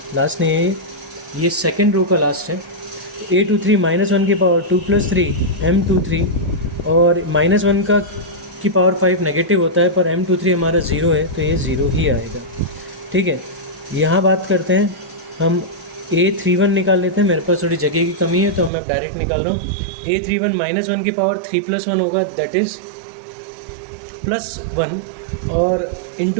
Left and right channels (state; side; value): drops out; left; at 18.7 s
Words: नहीं है, ये सेकेंड रो का लास्ट है। A23 -1 की पावर 2 + 3 M23, और -1 का की पावर 5 नेगेटिव होता है, पर M23 हमारा 0 है, तो ये 0 ही आएगा। ठीक है, यहाँ बात करते हैं हम A31 निकाल लेते हैं। मेरे पास थोड़ी जगह की कमी है, तो मैं डायरेक्ट निकाल रहा हूँ। A31 -1 की पावर 3 + 1 होगा, दैट इज़ +1, और